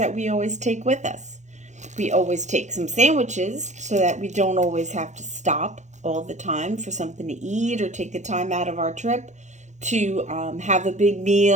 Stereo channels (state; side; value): late; left; 0.34 ms